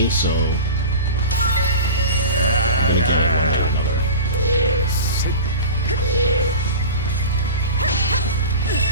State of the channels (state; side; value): inverted; both; correlation -0.32